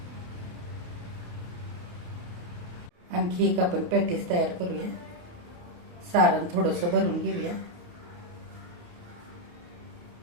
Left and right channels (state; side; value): late; left; 28 ms